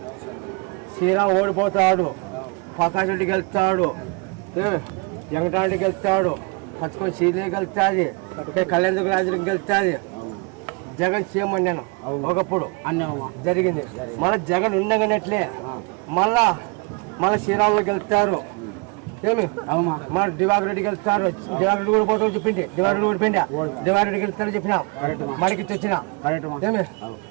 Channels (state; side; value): quieter; left; 31.0 dB